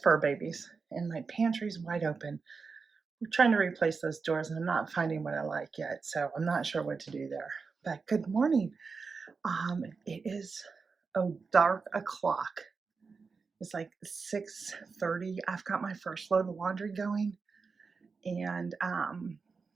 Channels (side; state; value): left; quieter; 4.8 dB